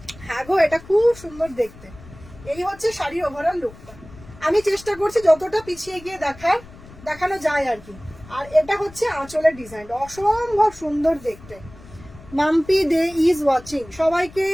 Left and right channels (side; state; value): left; noise; rumble, 20 dB below the sound